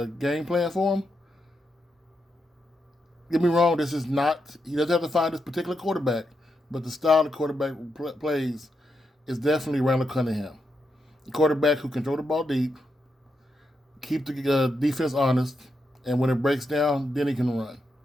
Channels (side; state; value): both; normal; correlation 0.84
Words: game plan for him. Get me wrong, this is not, he doesn't have to find this particular quarterback, but the style the quarterback plays is definitely Randall Cunningham. A quarterback who can throw the ball deep, keep the defense honest, and when it breaks down, then he can run.